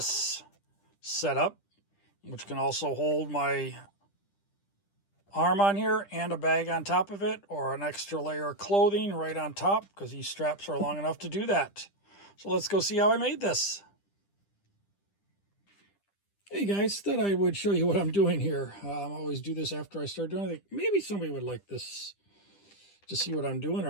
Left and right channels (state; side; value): late; right; 10 ms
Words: setup, which can also hold my arm on here and a bag on top of it, or an extra layer of clothing right on top, because these straps are long enough to do that. So let's go see how I made this. Hey guys, thought I would show you what I'm doing here. I always do this after I start doing it. Maybe somebody would like this to see what I'm doing